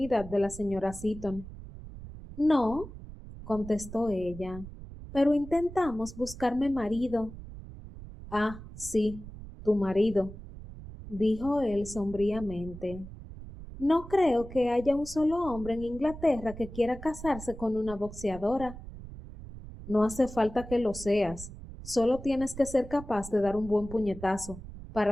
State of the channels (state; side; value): noise; right; rumble, 13 dB below the sound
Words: de la señora Seaton. No, contestó ella, pero intentamos buscarme marido. Ah, sí, tu marido, dijo él sombríamente. No creo que haya un solo hombre en Inglaterra que quiera casarse con una boxeadora. No hace falta que lo seas, solo tienes que ser capaz de dar un buen puñetazo